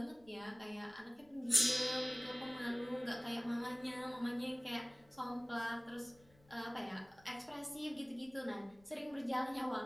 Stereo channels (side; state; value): left; noise; rumble, 27 dB below the sound